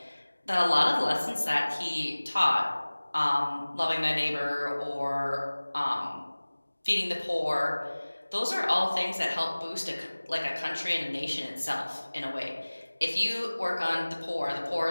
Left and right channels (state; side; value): inverted; both; correlation -1.00